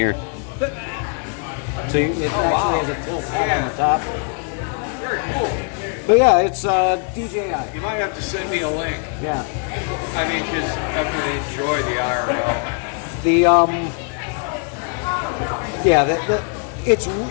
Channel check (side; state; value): right; quieter; 38.5 dB